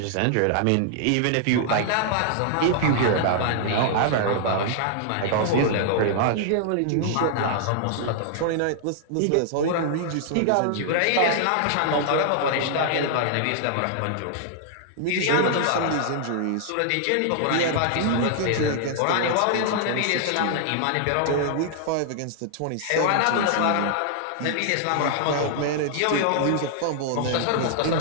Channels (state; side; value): different; both; correlation -0.01